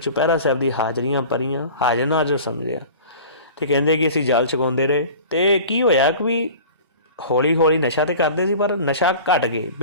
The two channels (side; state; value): both; inverted; correlation -0.40